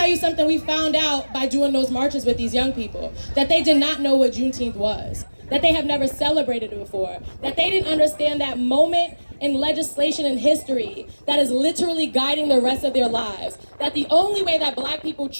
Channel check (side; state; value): both; inverted; correlation -1.00